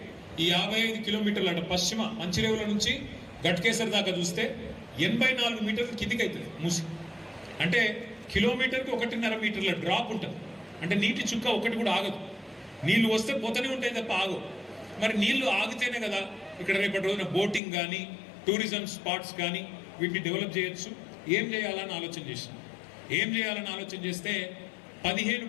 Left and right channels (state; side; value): drops out; right; at 17.6 s